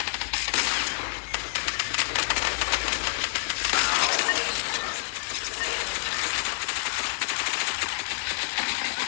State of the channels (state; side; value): silent; right; digital silence